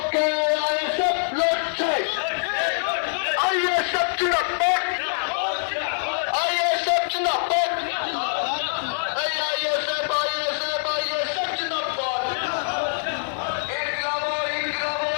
আইএসএফ লড়ছে, আইএসএফ জিন্দাবাদ, আইএসএফ জিন্দাবাদ, আইএসএফ আইএসএফ আইএসএফ জিন্দাবাদ, ইনকলাব ইনকলাব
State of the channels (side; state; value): right; silent; 57 dB below the other